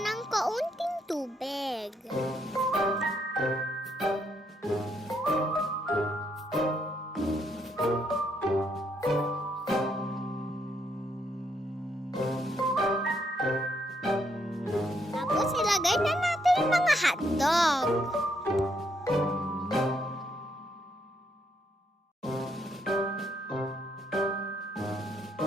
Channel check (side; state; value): both; normal; correlation 0.75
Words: kaunting tubig. Tapos ilagay na natin yung mga hotdog.